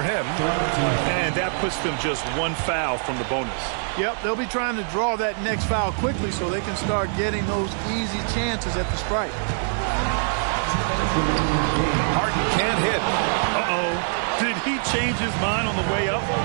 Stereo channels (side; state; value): left; silent; digital silence